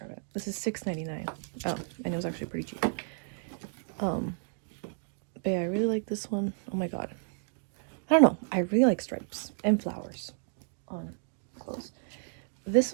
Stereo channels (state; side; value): silent; left; digital silence